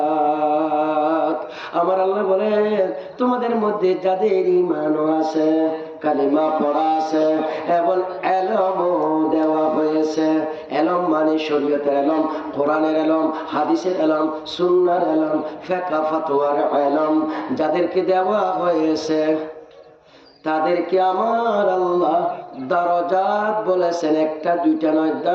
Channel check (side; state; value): both; identical; correlation 1.00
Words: আমার আল্লাহ বলেন তোমাদের মধ্যে যাদের ঈমানও আছে, কালিমা পড়া আছে এবং ইলমও দেওয়া হয়েছে। ইলম মানে শরীয়তের ইলম, কোরআনের ইলম, হাদিসের ইলম, সুন্নাহর ইলম, ফিকহ ফাতোয়ার ইলম যাদেরকে দেওয়া হয়েছে তাদেরকে আমার আল্লাহ দারাজাত বলেছেন। একটা দুইটা নয়,